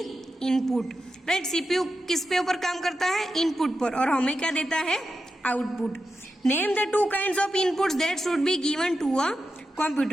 input. Right? CPU किस पे ऊपर काम करता है, इनपुट पर, और हमें क्या देता है, output. Name the 2 kinds of inputs that should be given to a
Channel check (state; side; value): normal; both; correlation 0.89